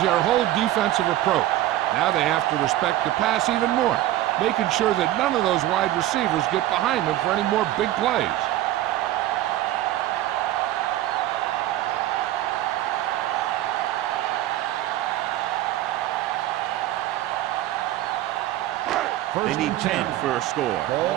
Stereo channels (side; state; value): left; quieter; 14.5 dB